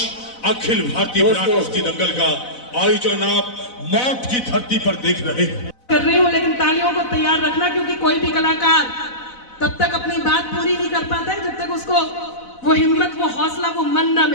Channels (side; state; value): right; late; 4.0 ms